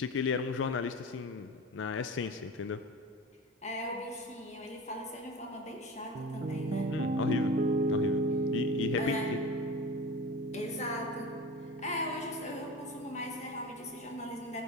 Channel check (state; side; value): normal; both; correlation 0.32